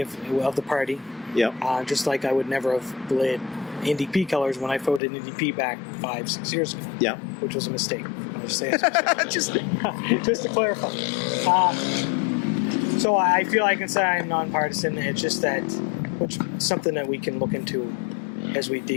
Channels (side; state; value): right; drops out; at 5.0 s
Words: the party. Just like I would never have bled NDP colors when I voted NDP back 5-6 years ago. Which was a mistake. I'll just say it's just to clarify. So I feel I can say I'm nonpartisan. It's just that, which is something that we can look into as we